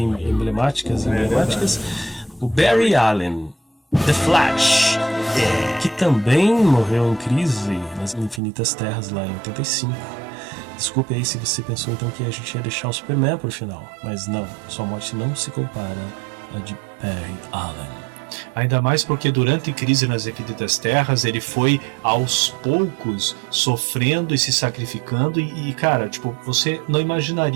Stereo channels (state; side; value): drops out; left; at 8.4 s